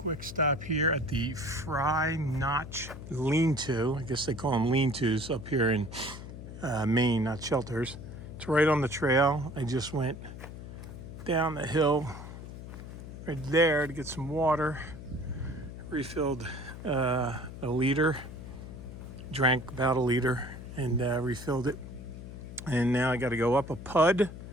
stop here at the Fry Notch Lean-To. I guess they call them lean-tos up here in Maine, not shelters. It's right on the trail. I just went down the hill right there to get some water. Refilled a liter, drank about a liter, and refilled it. And now I got to go up a pud.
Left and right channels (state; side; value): noise; left; hum, 11 dB below the sound